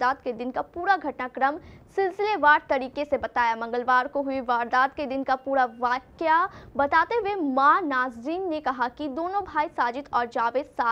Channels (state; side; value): identical; both; correlation 1.00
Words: के दिन का पूरा घटनाक्रम सिलसिलेवार तरीके से बताया। मंगलवार को हुई वारदात के दिन का पूरा वाकया बताते हुए मां नाजरीन ने कहा कि दोनों भाई साजिद और जावेद